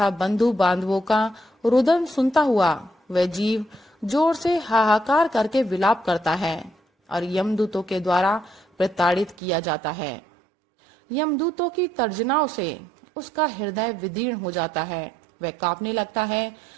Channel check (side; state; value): left; drops out; at 9.3 s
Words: बंधु बांधवों का रुदन सुनता हुआ वह जीव जोर से हाहाकार करके विलाप करता है और यमदूतों के द्वारा प्रताड़ित किया जाता है। यमदूतों की तर्जनाओं से उसका हृदय विदीर्ण हो जाता है, वह कांपने लगता है।